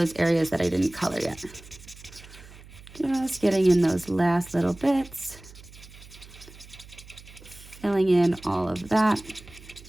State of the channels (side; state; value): right; noise; hum, 20 dB below the sound